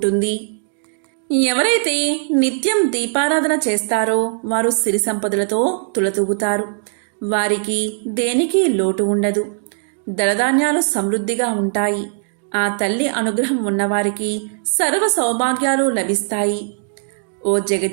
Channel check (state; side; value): silent; left; digital silence